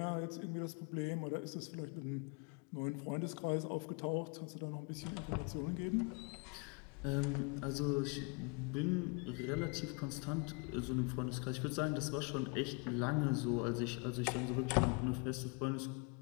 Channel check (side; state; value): right; quieter; 32.3 dB